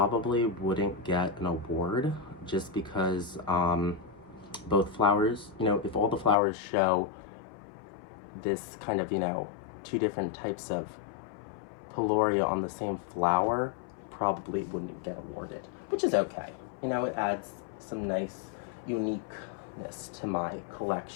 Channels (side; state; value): right; drops out; at 6.4 s